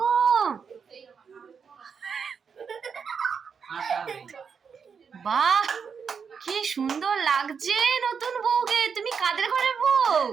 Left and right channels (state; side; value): quieter; left; 6.3 dB